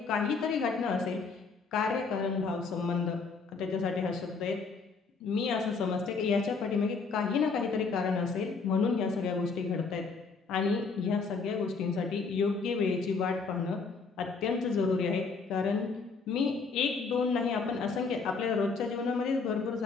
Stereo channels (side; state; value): right; quieter; 4.7 dB